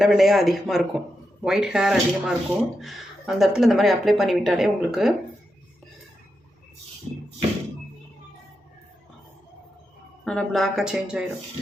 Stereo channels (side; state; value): both; normal; correlation 0.87